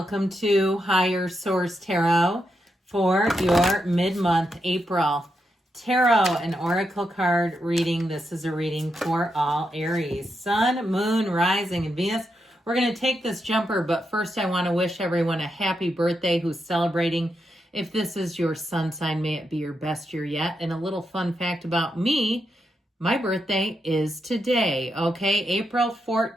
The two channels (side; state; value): both; normal; correlation 0.84